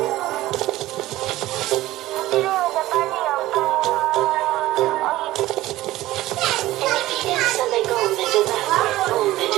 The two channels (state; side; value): quieter; left; 16.4 dB